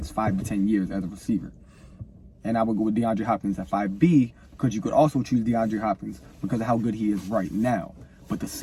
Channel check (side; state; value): both; identical; correlation 1.00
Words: 5 to 10 years as a receiver. And I would go with DeAndre Hopkins at 5B because you could also choose DeAndre Hopkins because of how good he is right now. But the